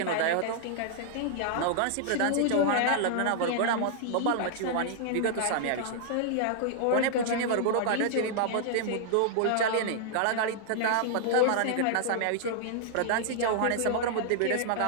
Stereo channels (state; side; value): different; both; correlation -0.01